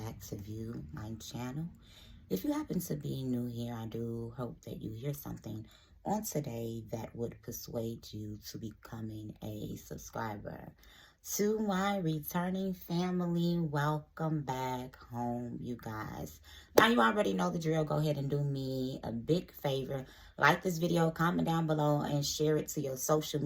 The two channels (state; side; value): identical; both; correlation 1.00